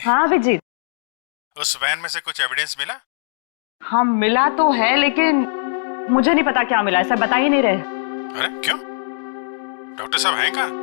हाँ अभिजीत। उस वैन में से कुछ एविडेंस मिला? हाँ मिला तो है, लेकिन मुझे नहीं पता क्या मिला है। सर बता ही नहीं रहे। अरे क्यों? डॉक्टर साहब हैं कहाँ?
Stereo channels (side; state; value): right; silent; digital silence